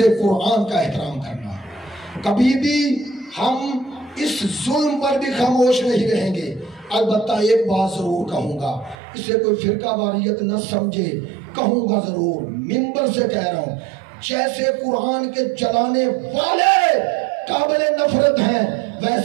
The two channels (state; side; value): drops out; left; at 9.0 s